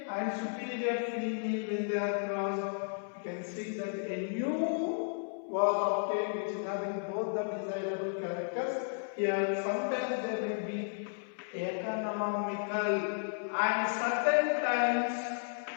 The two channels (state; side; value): silent; right; 55 dB below the other